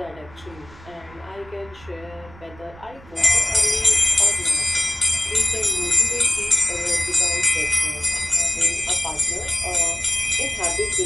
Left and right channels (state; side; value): noise; right; rumble, 22 dB below the sound